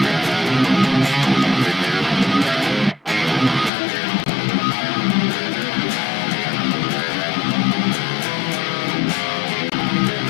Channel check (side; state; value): right; drops out; at 3.7 s